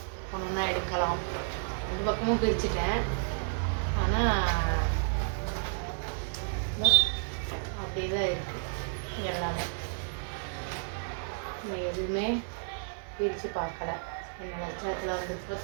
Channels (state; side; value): silent; left; digital silence